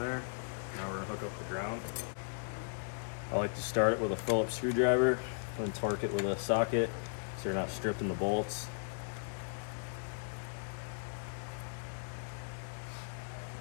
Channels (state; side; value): silent; right; 53 dB below the other